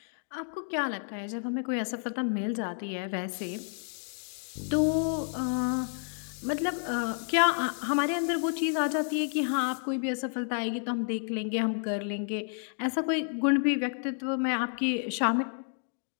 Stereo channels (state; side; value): silent; right; 58 dB below the other